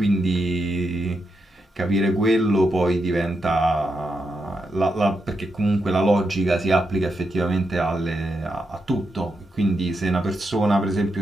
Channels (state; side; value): normal; both; correlation 0.84